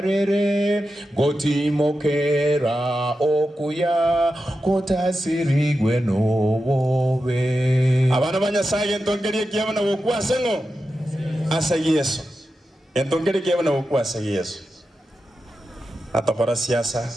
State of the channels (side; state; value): both; normal; correlation 0.90